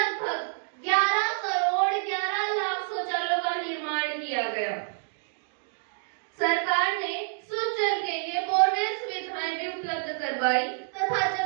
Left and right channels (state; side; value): silent; left; digital silence